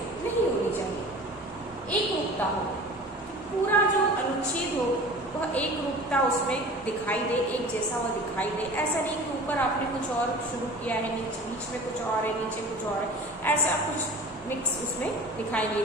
होनी चाहिए। एक रूपता हो, पूरा जो अनुच्छेद हो वह एक रूपता उसमें दिखाई दे, एक जैसा वह दिखाई दे। ऐसा नहीं कि ऊपर आपने कुछ और शुरू किया है, नीचे बीच में कुछ और है, नीचे कुछ और है, ऐसा कुछ मिक्स उसमें दिखाई नहीं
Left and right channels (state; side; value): normal; both; correlation 0.40